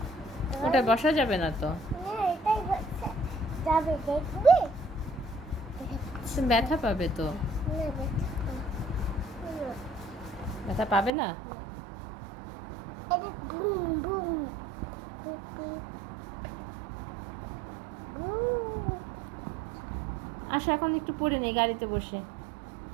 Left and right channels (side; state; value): left; drops out; at 11.1 s